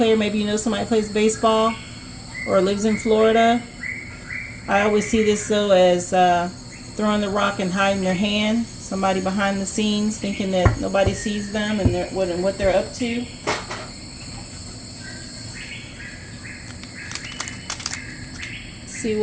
maybe you know somebody plays baseball or lives in Florida. I always see this though as throwing the rock and hiding their hand. Somebody behind the scenes thinking that nobody sees them and what they're up to. See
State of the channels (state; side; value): identical; both; correlation 1.00